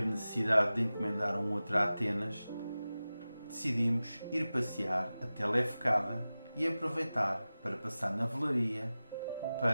necessidade de encomendar um outro a Atenas, decidimos ir passear até Lefkada e aproveitar para passar na velaria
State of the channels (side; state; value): both; inverted; correlation -0.96